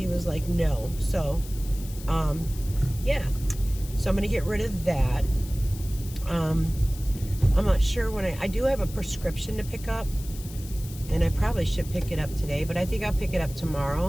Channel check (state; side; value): noise; left; hiss, 16 dB below the sound